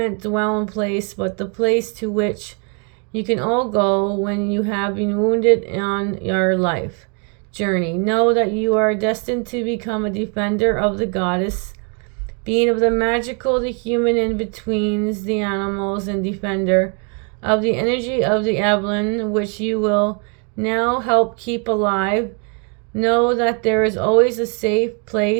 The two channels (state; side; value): quieter; left; 38.2 dB